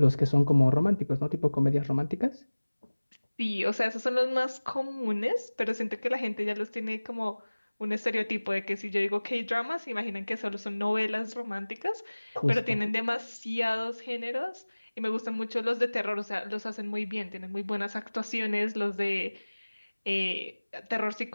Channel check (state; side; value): inverted; both; correlation -1.00